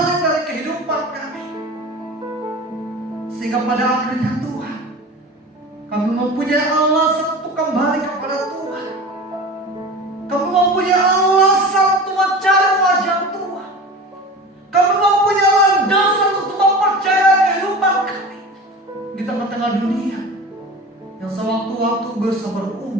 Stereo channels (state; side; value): normal; both; correlation 0.34